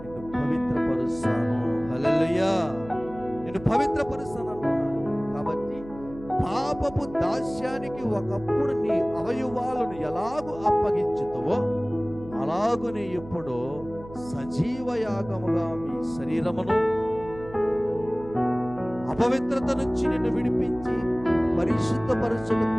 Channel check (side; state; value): right; noise; hum, 17 dB below the sound